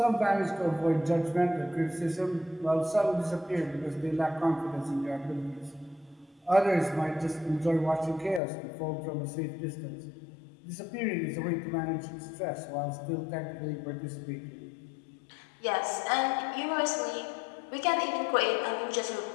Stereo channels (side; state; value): right; drops out; at 8.4 s